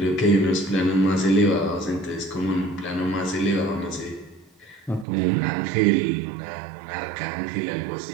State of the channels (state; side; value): drops out; left; at 5.1 s